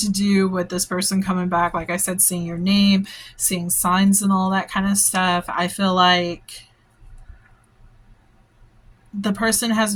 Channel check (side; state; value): both; identical; correlation 1.00